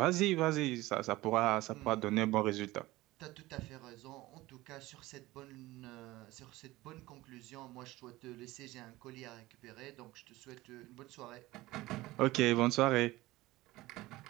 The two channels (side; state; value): left; quieter; 18.7 dB